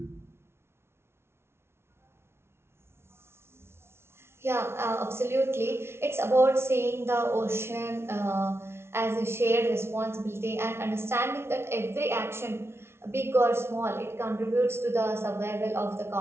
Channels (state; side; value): late; left; 0.12 ms